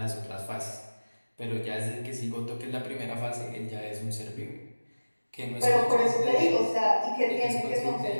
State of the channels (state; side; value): inverted; both; correlation -1.00